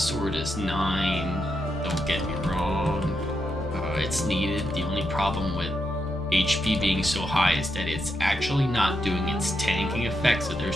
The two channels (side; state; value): both; normal; correlation 0.83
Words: is 9, don't get me wrong, it's needed. The only problem with HP being so high is that it's actually not doing its tanking effect, so